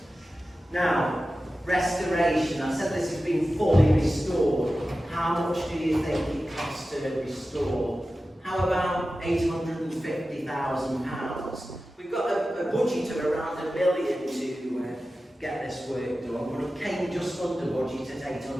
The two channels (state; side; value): normal; both; correlation 0.94